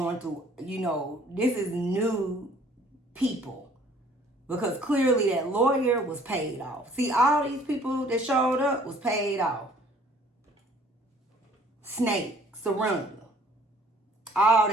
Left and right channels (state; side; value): normal; both; correlation 0.56